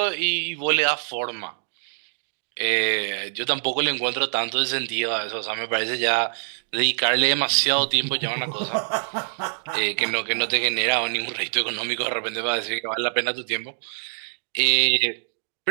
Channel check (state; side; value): silent; left; digital silence